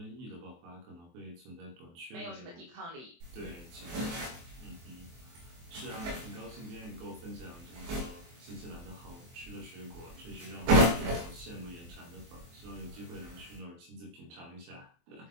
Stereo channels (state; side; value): late; left; 23 ms